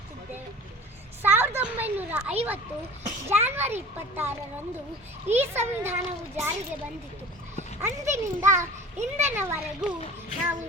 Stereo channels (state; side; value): normal; both; correlation 0.40